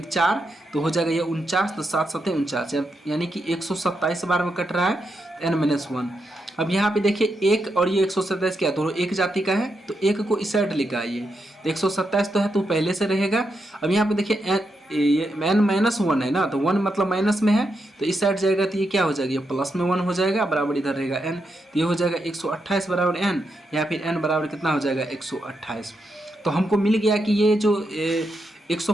4 तो हो जाएगा ये 49, तो 7 7 49, यानी कि 127 बार में कट रहा है n-1। अब यहाँ पे देखिए एक और ये 127 क्या दोनों एक जाति का है, तो एक को इस साइड लेकर आइए, तो 127 तो है तो पहले से रहेगा। अब यहाँ पे देखिए ये n-1 है ना, तो 1 मतलब माइनस में है, तो इस साइड जाएगा तो ये क्या हो जाएगा, ये प्लस में 1 हो जाएगा, बराबर इधर रहेगा n, तो ये हो जाएगा 128 बराबर n, या फिर n बराबर कितना हो जाएगा 128। तो हमको मिल गया कि ये जो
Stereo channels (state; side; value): normal; both; correlation 0.83